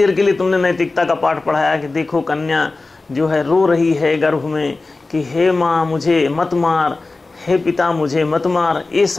के लिए तुमने नैतिकता का पाठ पढ़ाया कि देखो कन्या जो है रो रही है गर्भ में कि हे माँ मुझे मत मार, हे पिता मुझे मत मार। ये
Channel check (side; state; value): right; quieter; 3.5 dB